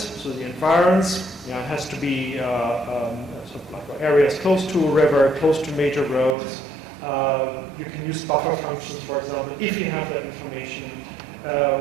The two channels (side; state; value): left; drops out; at 6.4 s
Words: So the environs, it has to be sort of like areas close to a river, close to major roads. You can use buffer functions, for example, if you have that information.